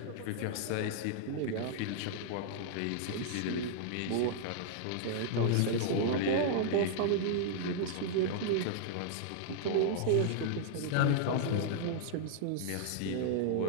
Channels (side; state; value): both; different; correlation -0.01